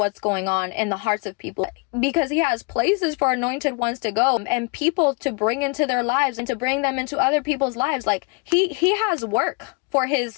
going on in the hearts of people, because he has places for anointed ones to go and people to bring into their lives and to bring them into other people's lives. Like he has work for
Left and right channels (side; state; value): right; quieter; 31.8 dB